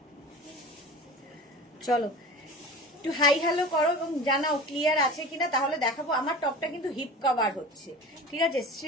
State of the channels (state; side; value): normal; both; correlation 0.35